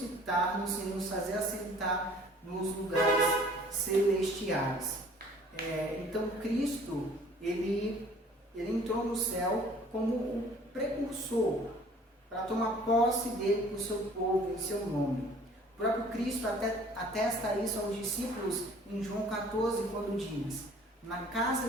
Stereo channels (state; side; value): normal; both; correlation 0.52